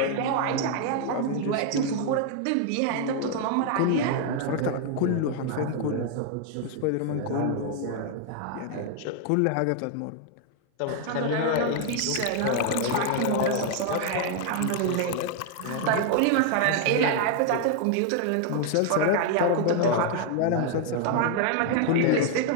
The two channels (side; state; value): both; different; correlation 0.00